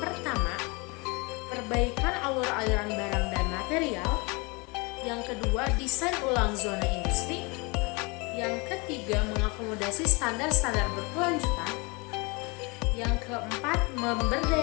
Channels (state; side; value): quieter; right; 28.4 dB